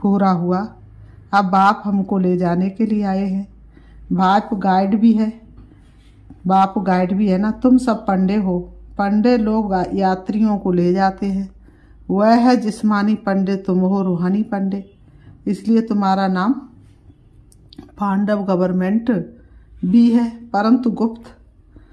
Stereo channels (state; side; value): identical; both; correlation 1.00